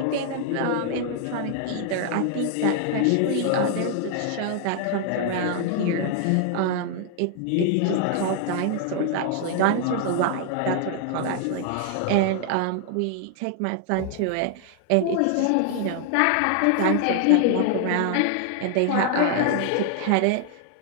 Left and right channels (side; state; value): both; different; correlation 0.00